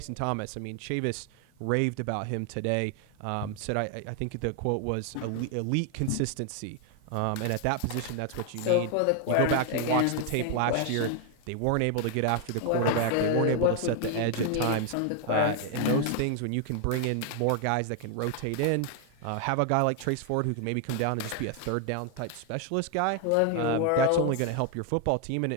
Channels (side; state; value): both; different; correlation 0.01